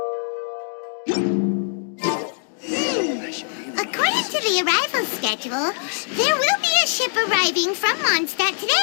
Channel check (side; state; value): right; silent; 57 dB below the other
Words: According to the arrival schedule, there will be a ship arriving from Mondstadt